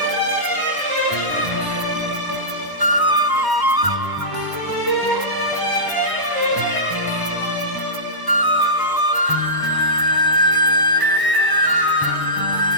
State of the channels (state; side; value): late; left; 1.0 ms